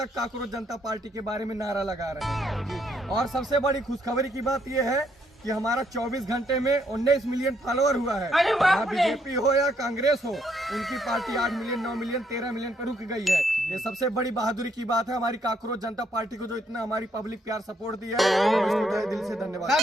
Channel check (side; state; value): both; normal; correlation 0.72